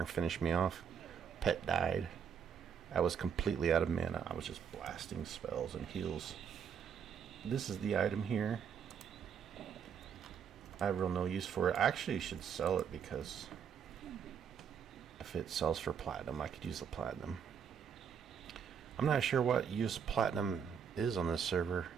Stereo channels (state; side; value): quieter; left; 7.4 dB